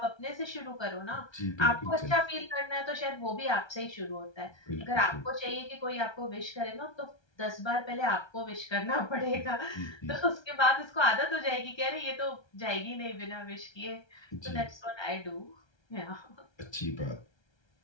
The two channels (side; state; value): right; late; 1.3 ms